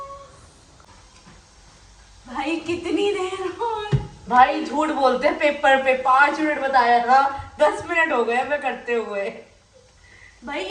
भाई कितनी देर और भाई झूठ बोलते हैं पेपर पे 5 मिनट बताया था 10 मिनट हो गए मैं करते हुए. भाई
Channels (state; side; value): identical; both; correlation 1.00